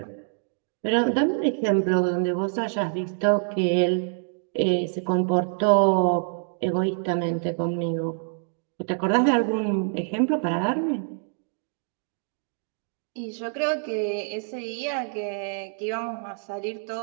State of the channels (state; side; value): silent; left; 61 dB below the other